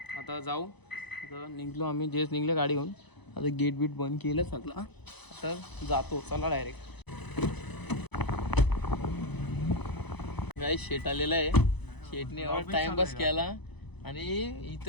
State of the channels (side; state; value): right; late; 0.99 ms